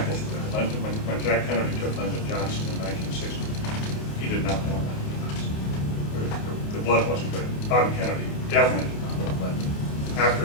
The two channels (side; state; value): right; late; 28 ms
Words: of that. When Jack Kennedy took Lyndon Johnson in 1960, he did not want Lyndon. The blood wasn't good. Bobby Kennedy definitely did not want Lyndon. After